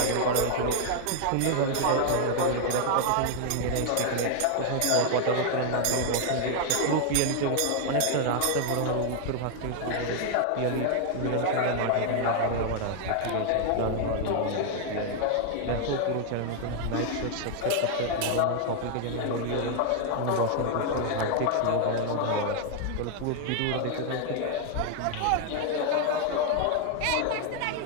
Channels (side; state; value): both; different; correlation 0.00